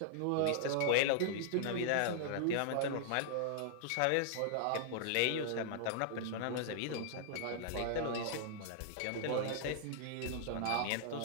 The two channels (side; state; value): both; different; correlation -0.01